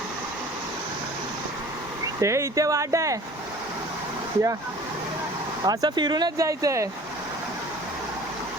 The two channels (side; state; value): both; normal; correlation 0.46